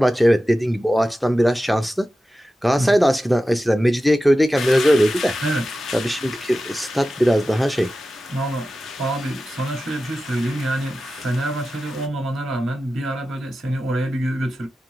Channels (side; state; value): both; normal; correlation 0.93